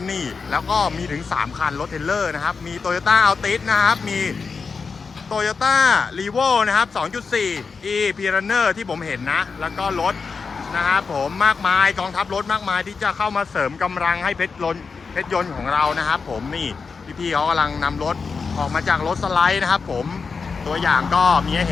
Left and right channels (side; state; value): right; quieter; 5.0 dB